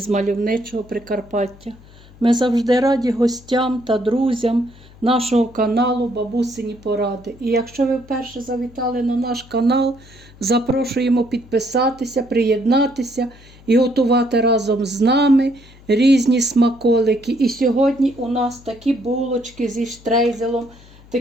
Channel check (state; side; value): noise; left; hum, 23 dB below the sound